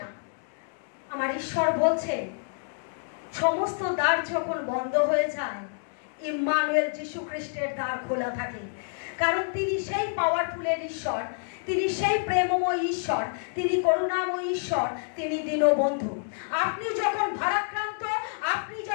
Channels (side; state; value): right; silent; digital silence